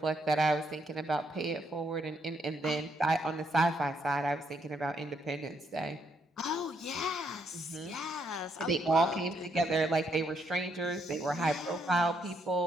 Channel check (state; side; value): normal; both; correlation 0.75